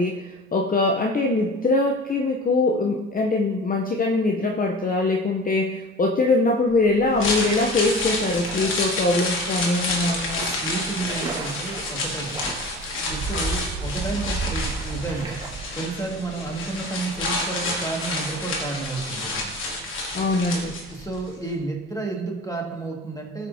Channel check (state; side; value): normal; both; correlation 0.38